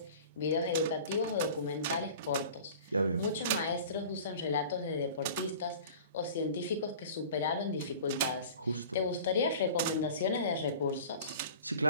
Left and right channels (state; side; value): inverted; both; correlation -0.42